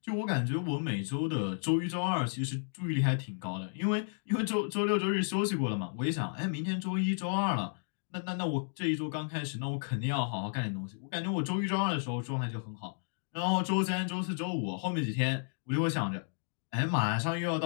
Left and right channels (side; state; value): right; silent; digital silence